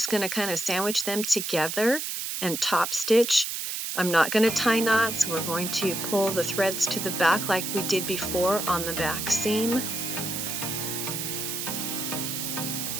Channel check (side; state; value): right; noise; hiss, 4 dB below the sound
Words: going to kind of sandwich them together and top stitch. I'm not going to tie knots. We're going to pull the threads to the back like we did before on the back seam.